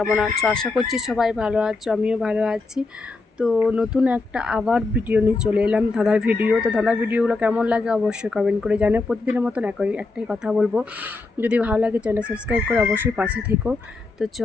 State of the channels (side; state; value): right; quieter; 3.6 dB